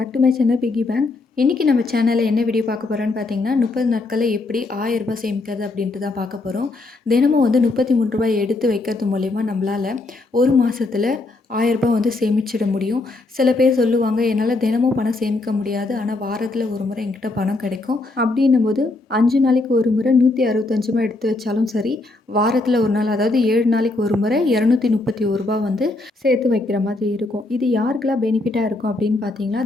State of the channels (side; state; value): right; quieter; 3.1 dB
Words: to my channel piggy bank. இன்றைக்கி நம்ம சேனலில் என்ன வீடியோ பார்க்க போகிறோன்னு பார்த்தீங்கன்னா, 30 நாட்களில் எப்படி ரூ. 1000 சேமிக்கிறது அப்படின்ட்டு தான் பார்க்க போகிறோம். தினமும் வந்து ரூ. 33 எடுத்து வைக்கிறது மூலயமா நம்மளால் ஒரு மாதத்தில் ரூ. 1000 வந்து சேமிச்சிட முடியும். சில பேர் சொல்லுவாங்க, என்னால் தினமும் பணம் சேமிக்க முடியாது, ஆனால் வாரத்தில் ஒரு முறை என்கிட்ட பணம் கிடைக்கும். அப்படின்னும் போது 5 நாளைக்கு ஒரு முறை 165 எடுத்து வச்சாலும் சரி, வாரத்தில் ஒரு நாள், அதாவது 7 நாளைக்கு ஒரு முறை ரூ. 231 வந்து சேர்த்து வைக்கிற மாதிரி இருக்கும். இது யாருக்கெல்லாம் பெனிஃபிட்டாக இருக்கும் அப்படின்னு பார்த்தீங்கன்னா,